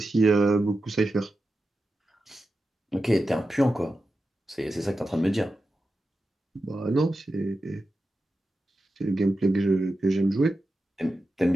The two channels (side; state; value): both; normal; correlation 0.91